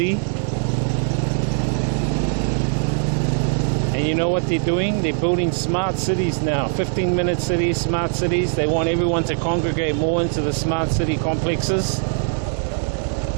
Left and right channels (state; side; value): silent; left; digital silence